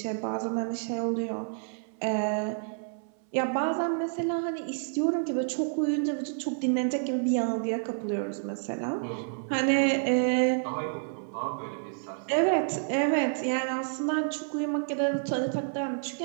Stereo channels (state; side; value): silent; left; 58 dB below the other